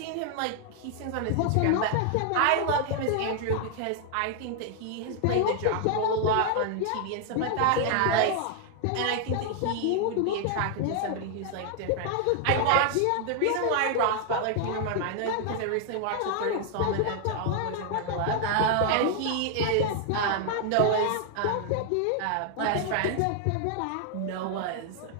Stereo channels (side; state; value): both; different; correlation 0.00